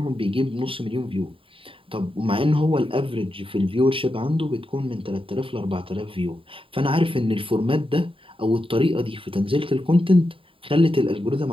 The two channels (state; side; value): late; left; 0.26 ms